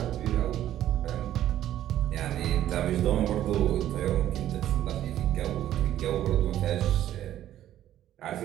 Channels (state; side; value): quieter; left; 12.3 dB